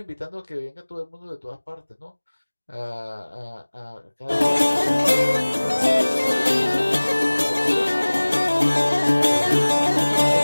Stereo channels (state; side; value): inverted; both; correlation -1.00